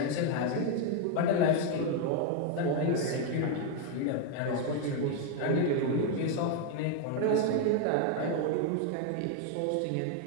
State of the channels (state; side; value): different; both; correlation 0.01